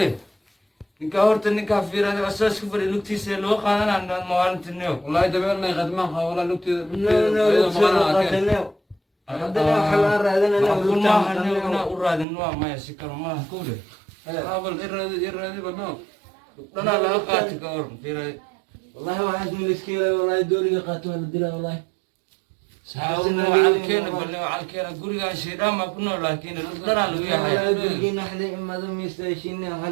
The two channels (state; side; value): drops out; left; at 12.2 s